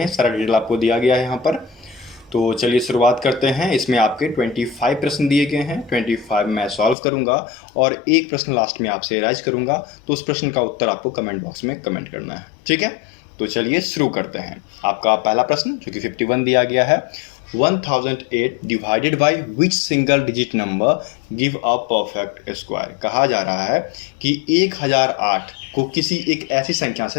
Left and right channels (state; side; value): drops out; right; at 7.0 s